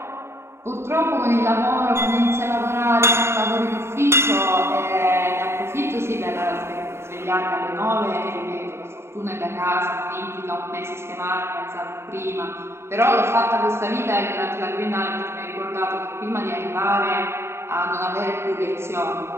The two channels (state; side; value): late; left; 0.12 ms